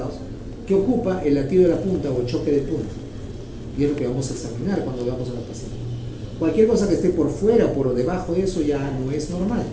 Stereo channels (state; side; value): identical; both; correlation 1.00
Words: que ocupa el latido de la punta o el choque de punta. Y es lo que vamos a examinar cuando veamos a la paciente. Cualquier cosa que esté por fuera o por debajo de eso ya no es normal.